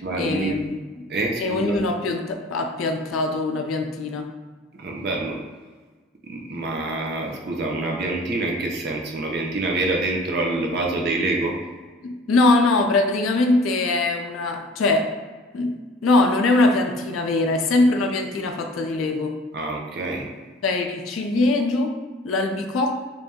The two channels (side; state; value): both; normal; correlation 0.48